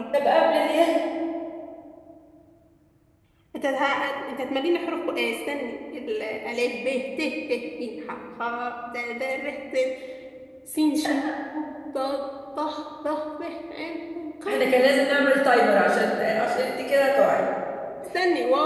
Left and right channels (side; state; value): both; identical; correlation 1.00